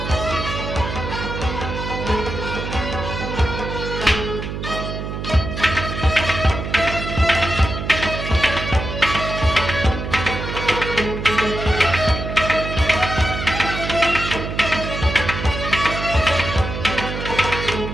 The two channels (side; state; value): right; noise; hum, 5 dB below the sound